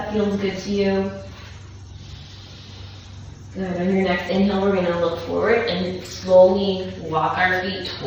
feels good to you. Good. On your next inhale, we're going to look forward and slowly walk our feet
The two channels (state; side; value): identical; both; correlation 1.00